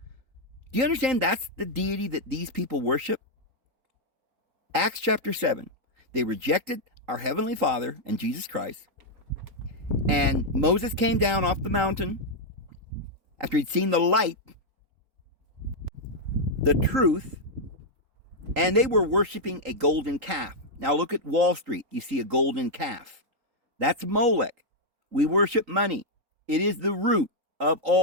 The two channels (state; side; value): late; left; 3.8 ms